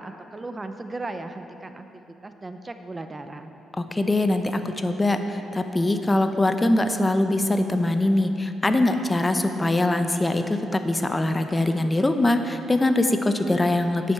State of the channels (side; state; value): both; normal; correlation 0.93